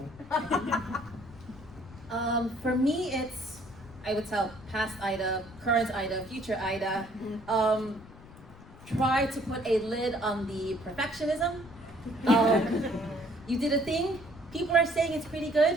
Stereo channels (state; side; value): noise; left; rumble, 20 dB below the sound